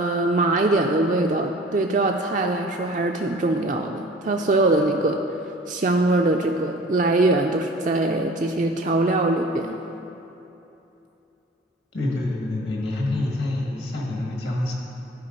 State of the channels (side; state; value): both; normal; correlation 0.46